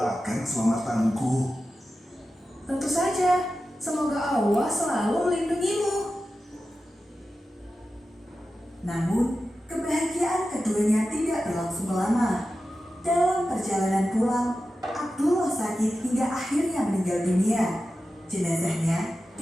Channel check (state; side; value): normal; both; correlation 0.92